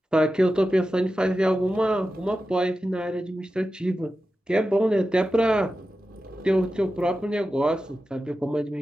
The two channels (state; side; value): normal; both; correlation 0.92